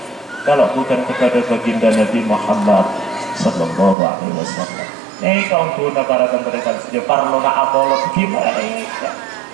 kalau bukan kepada baginda Nabi Muhammad Sallallahu Alaihi Wasallam. Kaum guna para tentara saja parlo na apolog gimana ya?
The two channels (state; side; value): drops out; left; at 4.0 s